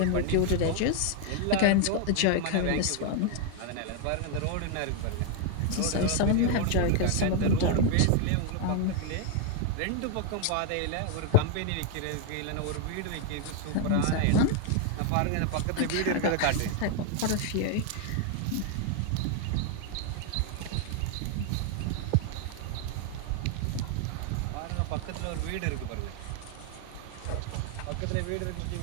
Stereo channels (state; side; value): different; both; correlation 0.00